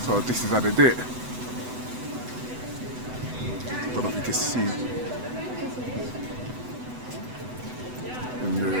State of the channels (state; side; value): late; left; 8.0 ms